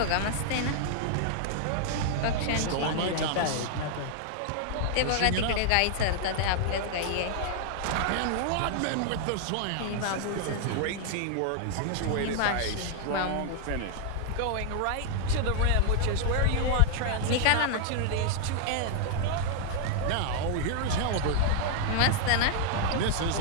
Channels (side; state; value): both; different; correlation 0.00